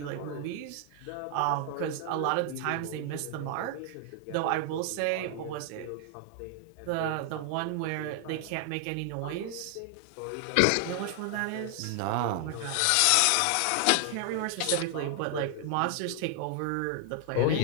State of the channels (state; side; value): different; both; correlation 0.00